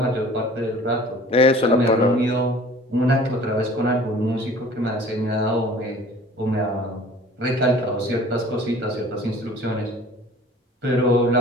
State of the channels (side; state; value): both; normal; correlation 0.47